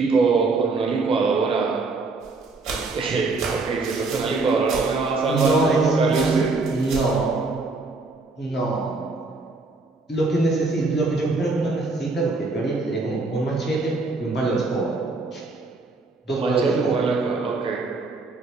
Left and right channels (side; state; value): left; quieter; 3.6 dB